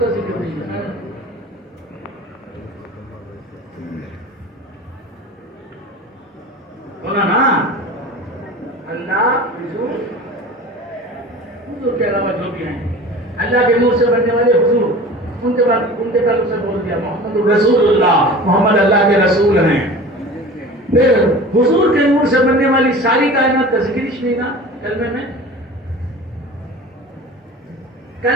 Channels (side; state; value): both; normal; correlation 0.38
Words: ذکر نہیں ہے. بولا نا اللہ حضور کے علاوہ جو بھی ہیں اللہ کے نور سے بننے والے حضور ان کے بعد اسے بول دیا محمد رسول اللہ، محمد اللہ کے رسول ہیں. پھر حضور کے نور سے بننے والی ساری کائنات کا ذکر ہی نہیں نا کلمے میں.